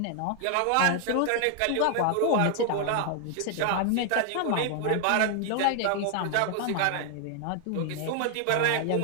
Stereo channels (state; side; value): different; both; correlation 0.00